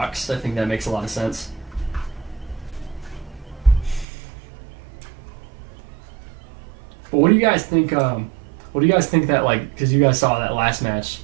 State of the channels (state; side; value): drops out; left; at 4.0 s